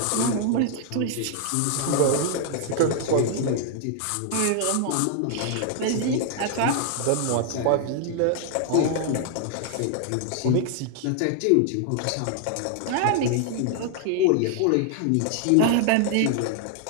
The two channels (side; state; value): both; different; correlation 0.00